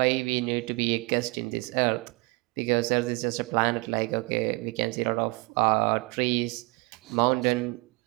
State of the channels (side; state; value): left; quieter; 26.7 dB